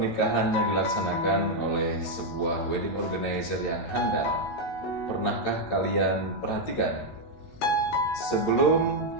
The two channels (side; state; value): right; late; 17 ms